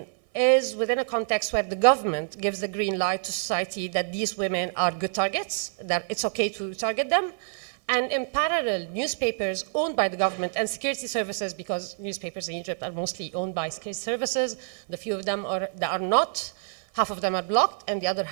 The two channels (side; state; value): left; silent; 57 dB below the other